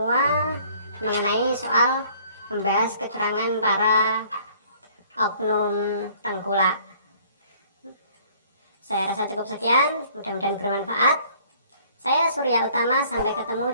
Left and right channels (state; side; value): inverted; both; correlation -0.57